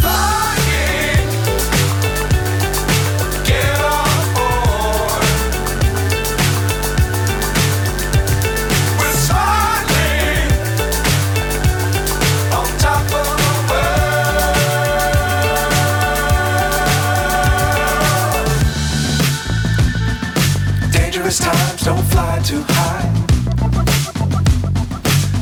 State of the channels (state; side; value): identical; both; correlation 1.00